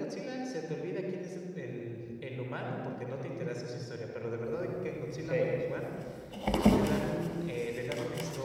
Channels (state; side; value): identical; both; correlation 1.00